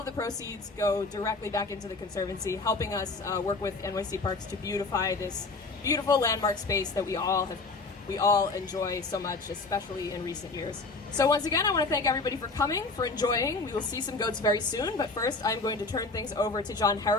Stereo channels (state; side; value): quieter; right; 3.7 dB